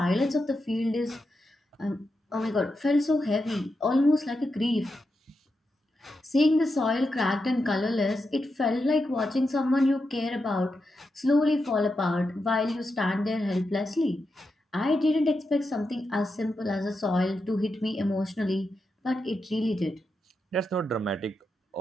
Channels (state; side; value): normal; both; correlation 0.87